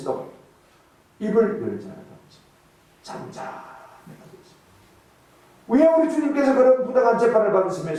입을 열지 않았지. 잠잠해가지고 있습니다. 왜 우리 주님께서 그런 부당한 재판을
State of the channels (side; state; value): both; identical; correlation 1.00